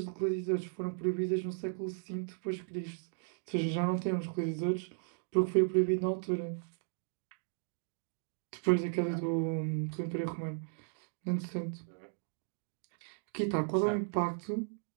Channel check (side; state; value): left; silent; digital silence